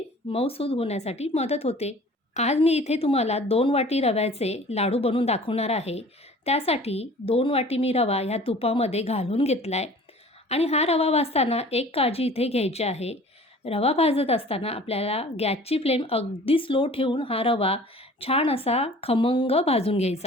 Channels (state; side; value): normal; both; correlation 0.47